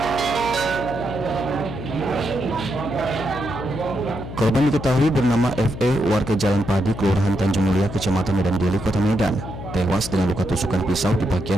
Korban diketahui bernama FE, warga Jalan Padi, Kelurahan Tanjung Mulia, Kecamatan Medan Deli, Kota Medan, tewas dengan luka tusukan pisau di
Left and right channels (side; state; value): left; noise; hum, 10 dB below the sound